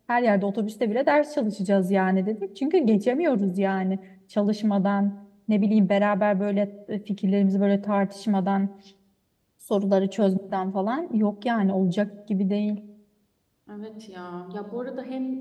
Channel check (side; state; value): both; identical; correlation 1.00